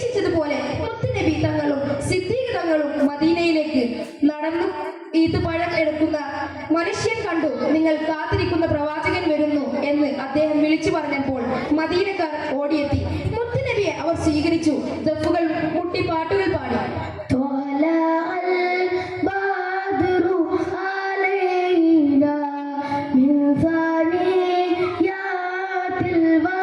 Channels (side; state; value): both; identical; correlation 1.00